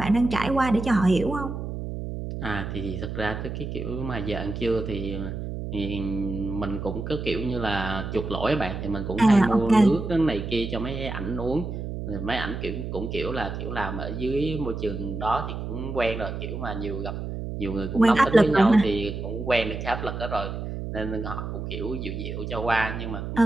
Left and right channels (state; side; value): noise; right; hum, 6 dB below the sound